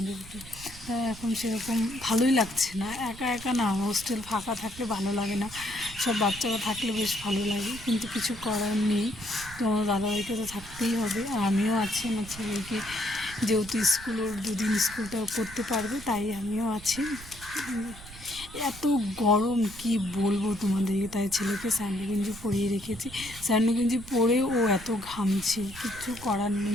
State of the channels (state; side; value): noise; right; rumble, 17 dB below the sound